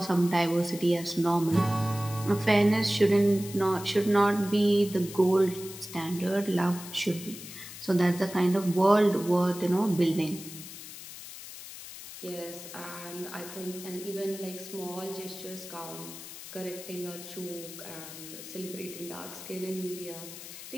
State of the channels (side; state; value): left; noise; hiss, 13 dB below the sound